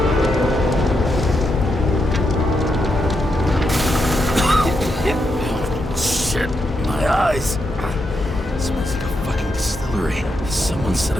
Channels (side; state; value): both; normal; correlation 0.82